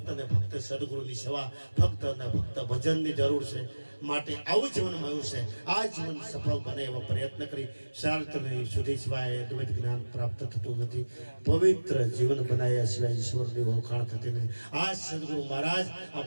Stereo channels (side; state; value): both; inverted; correlation -1.00